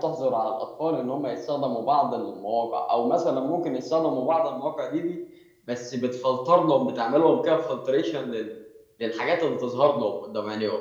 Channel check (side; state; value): both; identical; correlation 1.00